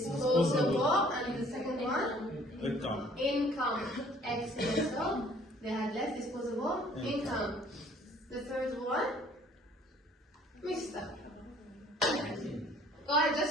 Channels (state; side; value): normal; both; correlation 0.57